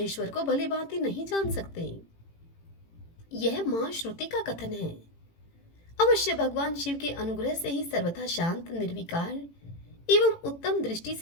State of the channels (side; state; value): right; late; 18 ms